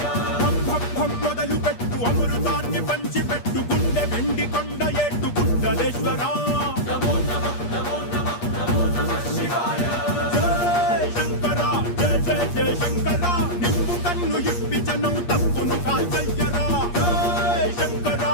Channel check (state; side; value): late; right; 8.5 ms